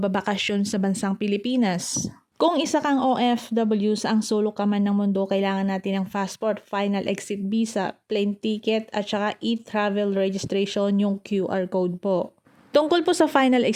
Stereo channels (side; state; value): both; identical; correlation 1.00